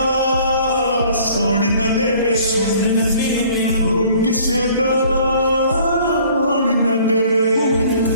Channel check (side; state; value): both; inverted; correlation -0.54